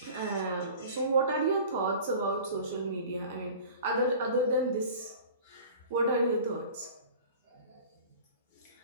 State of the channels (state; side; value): inverted; both; correlation -0.42